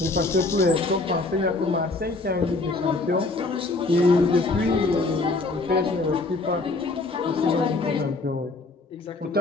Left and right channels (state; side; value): quieter; right; 3.3 dB